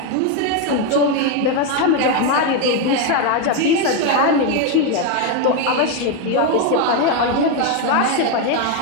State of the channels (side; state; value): both; different; correlation 0.02